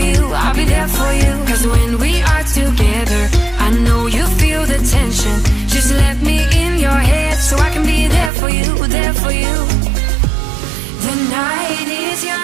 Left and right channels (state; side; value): drops out; left; at 8.3 s